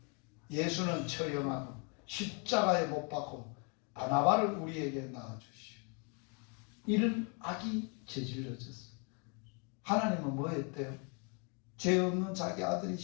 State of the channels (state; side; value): quieter; right; 36.1 dB